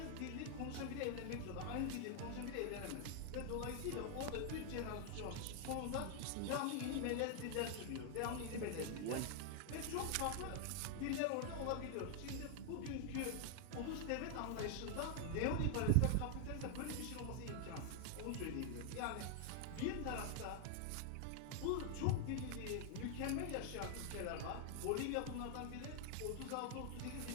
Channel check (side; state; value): both; different; correlation 0.00